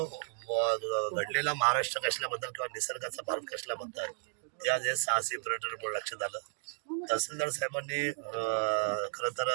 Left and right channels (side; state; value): left; silent; digital silence